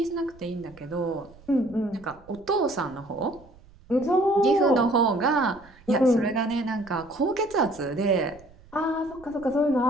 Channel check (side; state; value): right; noise; rumble, 24 dB below the sound